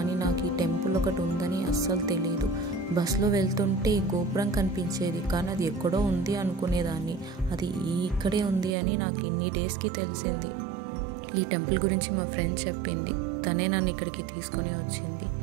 నాకు ఈ టెంపుల్ ఒకటి ఉందని అస్సలు తెలియదు. బస్సులో వెళ్తుంటే ఈ గోపురం కనిపించేది, కానీ అది ఎక్కడో ఉంది అనుకునేదాన్ని. అది ఇక్కడే ఉంది అని నాకు ఇన్ని డేస్కి తెలిసింది. ఈ టెంపుల్ గురించి మా ఫ్రెండ్ చెప్పింది, తనే నన్ను ఇక్కడికి తీసుకొని వచ్చింది.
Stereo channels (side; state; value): left; drops out; at 8.8 s